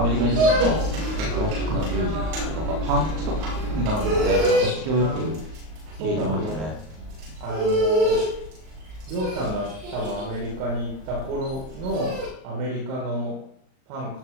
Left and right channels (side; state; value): left; late; 38 ms